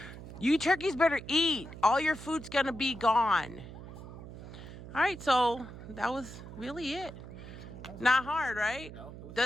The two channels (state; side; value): noise; right; hum, 13 dB below the sound